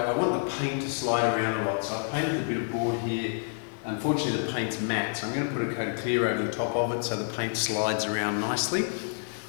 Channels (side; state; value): right; silent; 58 dB below the other